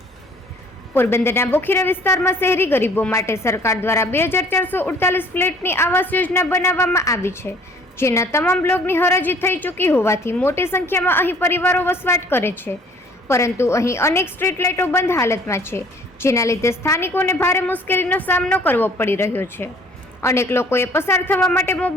પોરબંદરના બોખીરા વિસ્તારમાં શહેરી ગરીબો માટે સરકાર દ્વારા 2448 ફ્લેટની આવાસ યોજના બનાવવામાં આવી છે, જેના તમામ બ્લોકની હરાજી થઈ ચૂકી હોવાથી મોટી સંખ્યામાં અહીં પરિવારો વસવાટ કરે છે. પરંતુ અહીં અનેક સ્ટ્રીટ લાઇટો બંધ હાલતમાં છે, જેના લીધે સ્થાનિકોને ભારે મુશ્કેલીનો સામનો કરવો પડી રહ્યો છે. અનેક લોકોએ પસાર થવા માટે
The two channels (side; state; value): both; normal; correlation 0.54